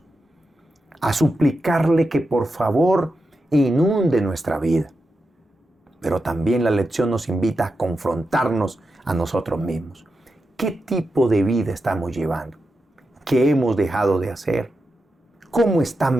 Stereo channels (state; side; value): normal; both; correlation 0.88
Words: a suplicarle que por favor inunde nuestra vida. Pero también la lección nos invita a confrontarnos a nosotros mismos. ¿Qué tipo de vida estamos llevando? ¿Qué hemos dejado de hacer? ¿Cómo está